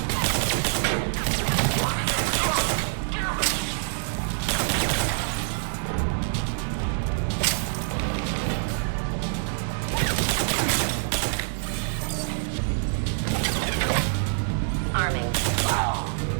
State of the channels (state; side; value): silent; left; 61 dB below the other